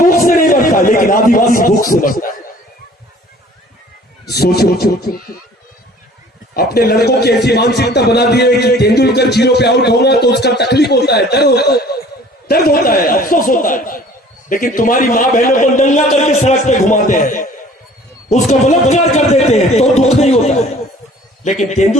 से नहीं मरता, लेकिन आदिवासी भूख से मरता है। सोचो, अपने लड़कों की ऐसी मानसिकता बना दी है कि तेंदुलकर 0 पे आउट होगा तो उसका तकलीफ होता है, दर्द होता है, अफसोस होता है। लेकिन तुम्हारी माँ बहनों को नंगा करके सड़क पे घुमाते हैं, उसका बलात्कार कर देते हैं तो दुख नहीं होता है, लेकिन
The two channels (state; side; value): normal; both; correlation 0.51